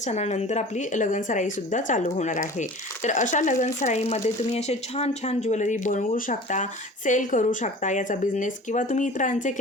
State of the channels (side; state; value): both; normal; correlation 0.41